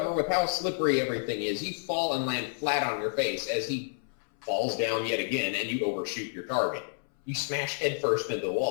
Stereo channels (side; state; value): right; silent; 58 dB below the other